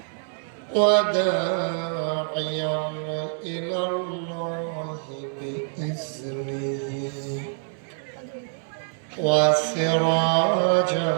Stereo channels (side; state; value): left; silent; digital silence